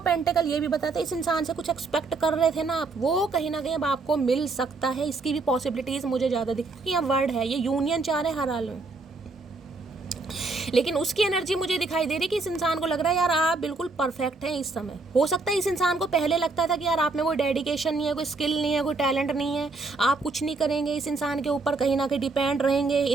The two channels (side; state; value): left; quieter; 3.7 dB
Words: पेंटिकल ये भी बताते हैं इस इंसान से कुछ एक्सपेक्ट कर रहे थे ना आप, वो कहीं ना कहीं अब आपको मिल सकता है। इसकी भी पॉसिबिलिटीज मुझे ज़्यादा दिखती है, क्योंकि यहाँ वर्ड है, ये यूनियन चाह रहे हैं हर हाल में। लेकिन उसकी एनर्जी मुझे दिखाई दे रही कि इस इंसान को लग रहा है यार आप बिल्कुल परफेक्ट हैं इस समय। हो सकता है इस इंसान को पहले लगता था कि यार आप में कोई डेडिकेशन नहीं है, कोई स्किल नहीं है, कोई टैलेंट नहीं है, आप कुछ नहीं करेंगे, इस इंसान के ऊपर कहीं ना कहीं डिपेंड रहेंगे,